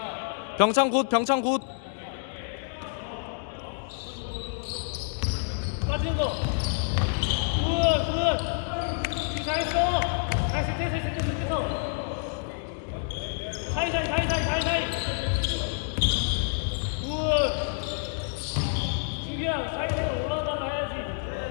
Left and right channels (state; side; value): silent; right; 59 dB below the other